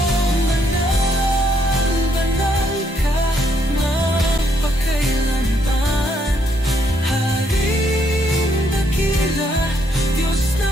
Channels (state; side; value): normal; both; correlation 0.73